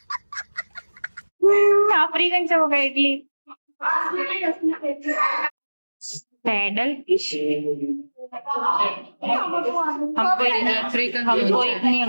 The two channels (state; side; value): inverted; both; correlation -1.00